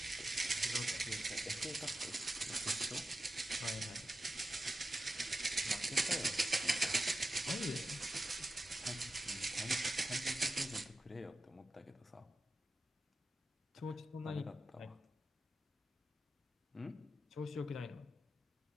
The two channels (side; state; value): both; normal; correlation 0.92